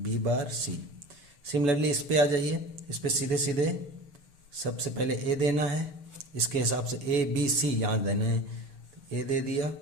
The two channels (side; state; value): left; late; 7.0 ms